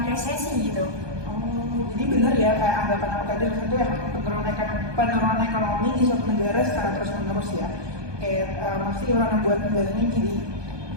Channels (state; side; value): late; left; 1.2 ms